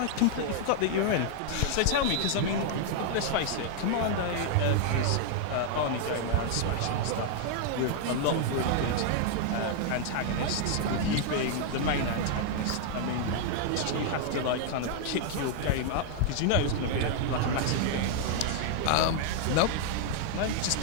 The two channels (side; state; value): both; different; correlation 0.00